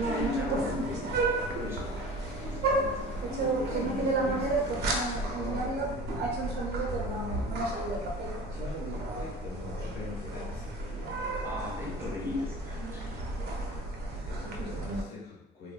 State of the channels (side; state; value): both; normal; correlation 0.40